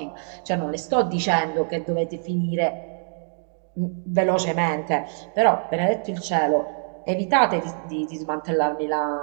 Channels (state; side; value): silent; left; digital silence